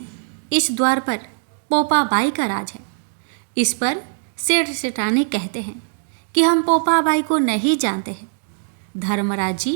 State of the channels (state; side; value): silent; left; digital silence